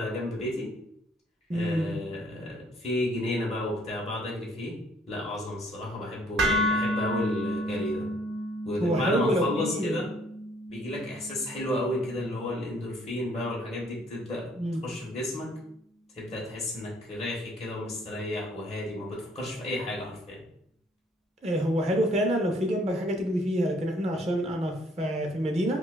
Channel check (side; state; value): both; normal; correlation 0.62